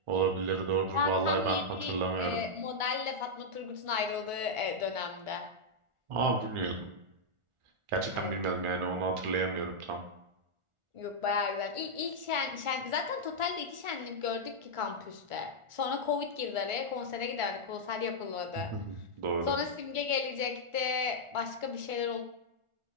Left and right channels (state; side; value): late; left; 1.4 ms